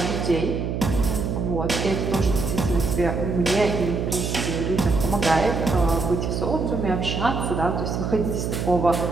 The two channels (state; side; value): noise; right; hum, 2 dB below the sound